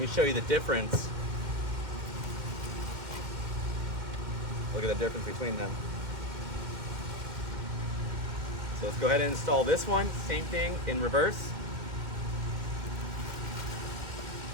show you the difference. Look at the difference between them. So let's go ahead and install this one. Same thing in reverse.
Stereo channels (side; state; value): left; late; 2.3 ms